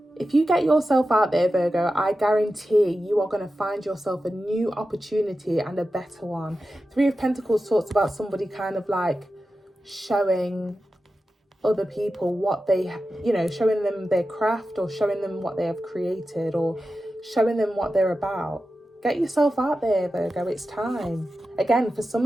If you get yourself out there, Virgo, I guarantee you are going to find yourself a new opportunity and a better one. Three of Pentacles talks about somebody kind of like showing other people what they, showing them their craft, or showing them what they have created, or showing them what they're about. Get yourself out there, Virgo. It's time. Again, for some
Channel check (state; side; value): normal; both; correlation 0.92